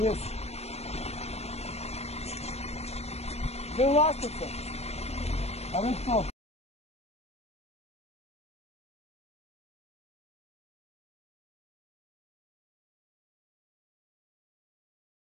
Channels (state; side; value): late; right; 0.31 ms